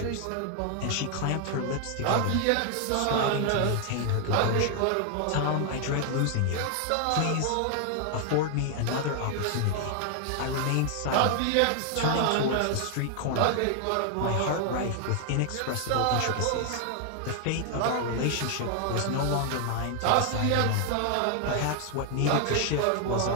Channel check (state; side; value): different; both; correlation 0.00